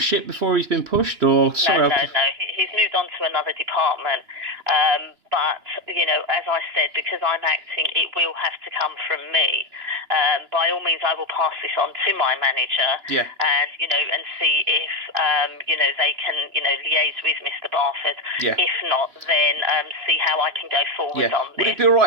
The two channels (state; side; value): late; left; 2.9 ms